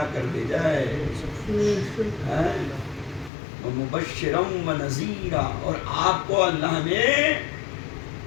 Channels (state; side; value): drops out; right; at 3.3 s